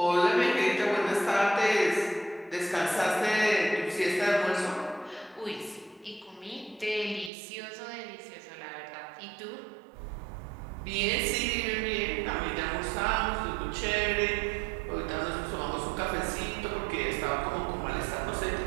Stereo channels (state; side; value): drops out; left; at 7.3 s